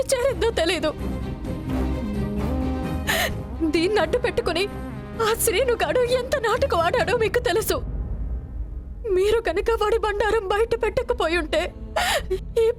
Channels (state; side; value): identical; both; correlation 1.00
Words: చేరిందో తెలీదు. దీన్ని అడ్డు పెట్టుకుని ఆ శ్రీనుగాడు ఎంత నాటకం ఆడాడో మీకు తెలుసు. మీరు కనుక వాడి బండారం బయట పెట్టకపోయి ఉంటే ఈ